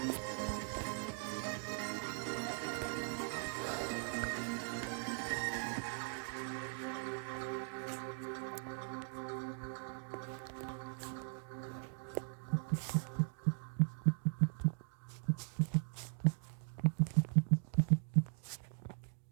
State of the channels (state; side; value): silent; left; 51 dB below the other